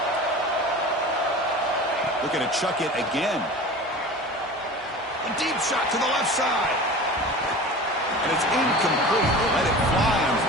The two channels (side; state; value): both; normal; correlation 0.36